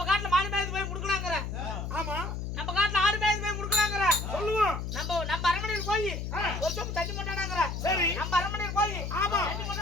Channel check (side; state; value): left; noise; hum, 4 dB below the sound